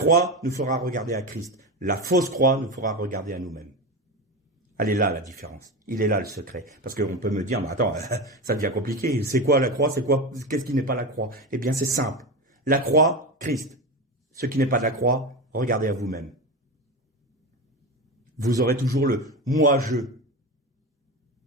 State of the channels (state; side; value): normal; both; correlation 0.21